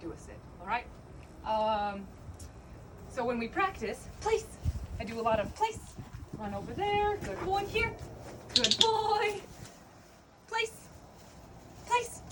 a sit, all right? So when we practice, place. I do a lot of place. Run over there. Good boy. Here. Good boy. Place. Place.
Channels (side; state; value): both; identical; correlation 1.00